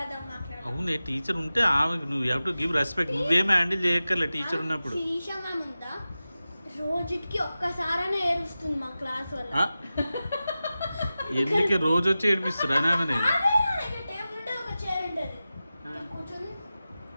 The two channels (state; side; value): inverted; both; correlation -0.95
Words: అవునే, టీచర్ ఉంటే ఆమెకు నువ్వు హ్యావ్ టు గివ్ రెస్పెక్ట్. నువ్వేం హ్యాండిల్ చేయక్కర్లే టీచర్ ఉన్నప్పుడు. రోజుకి ఒక్కసారైనా ఏడుస్తుంది మా క్లాస్ వల్ల. ఎందుకు రోజు వచ్చి ఏడిపిస్తురా? ఆమె